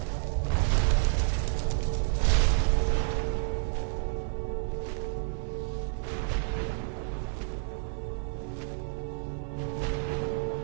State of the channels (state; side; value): silent; left; 58 dB below the other